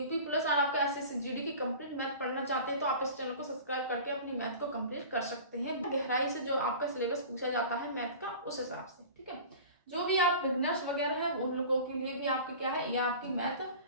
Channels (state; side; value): inverted; both; correlation -0.38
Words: पुलिस और आपका SSC/GD की कंप्लीट मैथ पढ़ना चाहते हैं तो आप इस चैनल को सब्सक्राइब करके अपनी मैथ को कंप्लीट कर सकते हैं। गहराई से जो आपका सिलेबस पूछा जाता है मैथ का, उस हिसाब से, ठीक है। जो भी आप बिगनर्स वगैरह है उन लोगों के लिए भी आपके क्या है, ये आपकी मैथ,